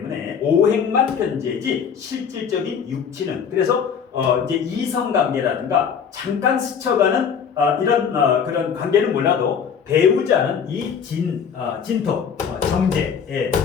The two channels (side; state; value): right; quieter; 7.1 dB